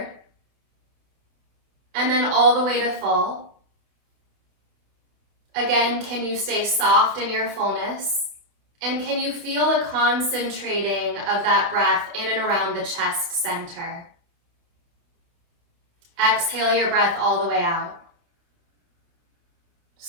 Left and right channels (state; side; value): late; left; 28 ms